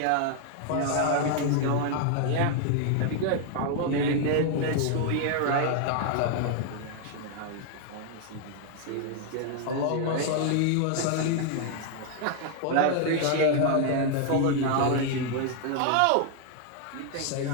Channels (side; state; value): both; different; correlation 0.00